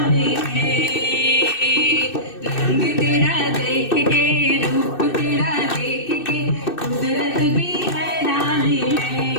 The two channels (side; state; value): right; late; 2.6 ms